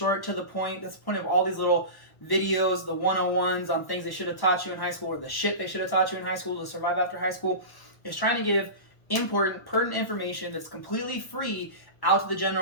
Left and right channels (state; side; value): late; right; 1.1 ms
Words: to the point. That's the point of all these little videos, the 101s on things they should have taught you in high school, or the shit they should have taught you in high school to survive after high school, is trying to give important, pertinent information that's completely free out to the